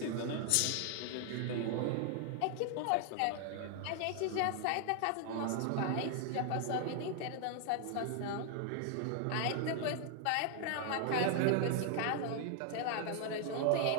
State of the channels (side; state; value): both; different; correlation 0.00